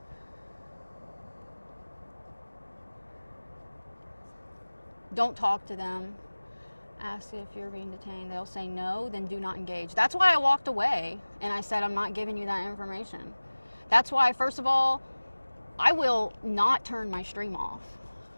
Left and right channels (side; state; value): both; inverted; correlation -1.00